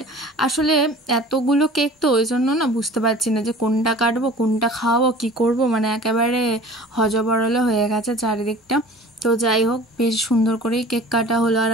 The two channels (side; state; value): both; normal; correlation 0.43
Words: আসলে এতগুলো কেক তো ওই জন্য না বুঝতে পারছি না যে কোনটা কাটবো, কোনটা খাওয়াবো, কি করব, মানে একেবারে হজবরলে হয়ে গেছে চারিদিকটা। তো যাই হোক, বেশ সুন্দর করেই কেক কাটা হলো। আর